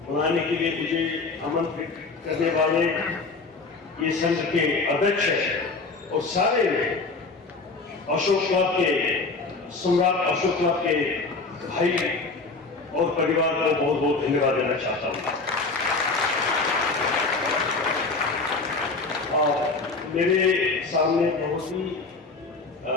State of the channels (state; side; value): quieter; right; 3.8 dB